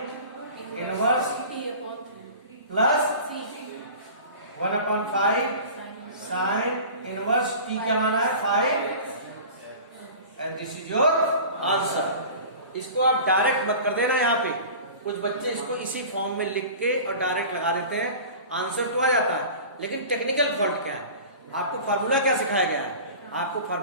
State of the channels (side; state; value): both; inverted; correlation -0.38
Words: inverse plus 1/5 sign inverse t क्या माना है? 5, and this is your answer. इसको आप डायरेक्ट मत कर देना। यहाँ पे कुछ बच्चे इसको इसी फॉर्म में लिख के और डायरेक्ट लगा देते हैं, आंसर तो आ जाता है, लेकिन टेक्निकल फॉल्ट क्या है? आपको फार्मूला क्या सिखाया गया है? आपको